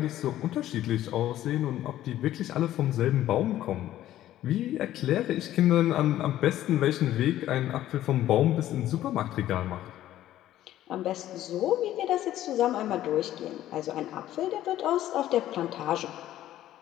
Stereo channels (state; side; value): quieter; right; 13.3 dB